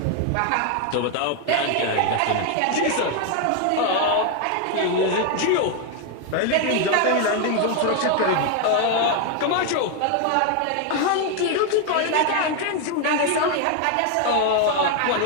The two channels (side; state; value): both; different; correlation 0.01